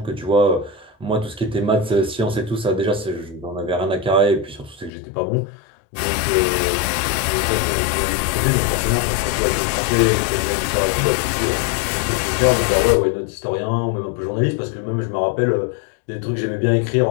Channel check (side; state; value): right; drops out; at 4.9 s